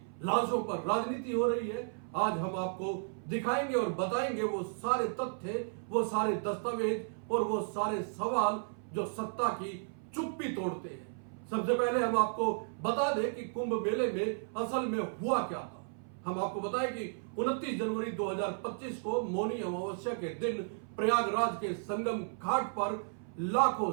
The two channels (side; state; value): left; silent; 55 dB below the other